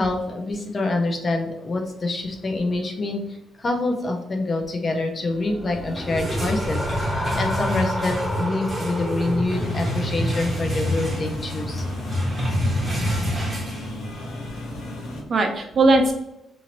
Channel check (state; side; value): normal; both; correlation 0.83